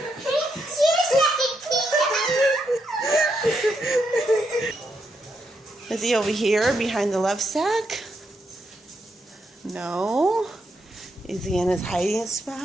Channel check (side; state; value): both; normal; correlation 0.81